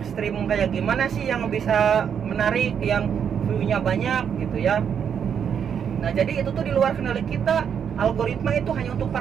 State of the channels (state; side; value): quieter; left; 7.8 dB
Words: kayak gimana sih yang bisa menarik, yang view-nya banyak gitu ya. Nah, jadi itu tuh di luar kendali kita. Algoritma itu hanya untuk